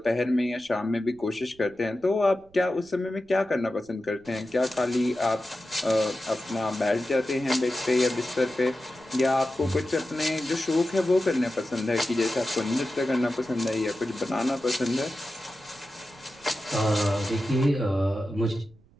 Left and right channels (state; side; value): noise; right; rumble, 28 dB below the sound